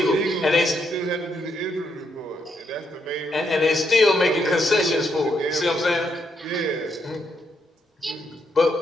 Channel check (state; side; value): normal; both; correlation 0.77